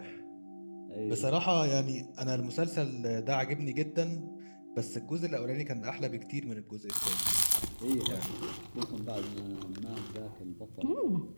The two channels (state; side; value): inverted; both; correlation -1.00